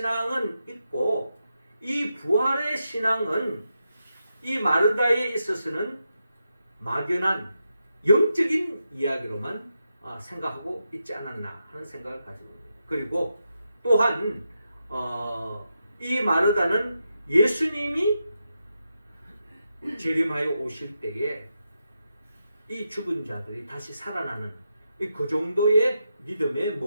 있고 이 부활의 신앙은 이 마르다에 있어서는 막연한 영적인 이야기로만 생각하고 있지 않았나 하는 생각을 가지고 있습니다. 그리고 또한 이 마르다는 예수님이 재림하여 오실 때에 이 죽은 자들이 다시 살아나는 그 정도의 믿음에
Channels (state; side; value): inverted; both; correlation -0.86